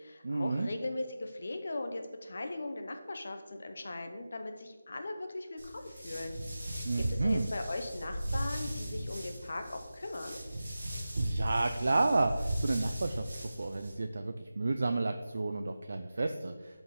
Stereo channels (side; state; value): both; inverted; correlation -0.95